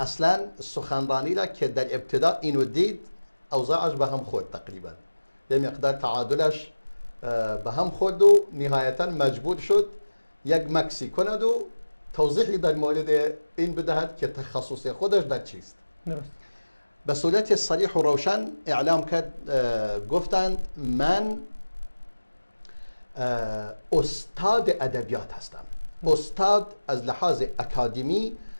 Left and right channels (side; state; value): both; inverted; correlation -1.00